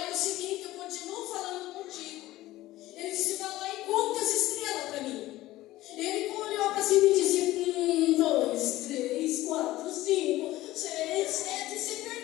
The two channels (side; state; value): right; quieter; 16.5 dB